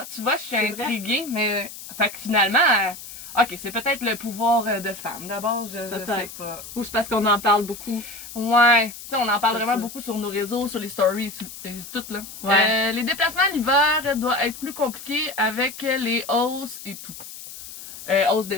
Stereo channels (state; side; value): noise; left; hiss, 13 dB below the sound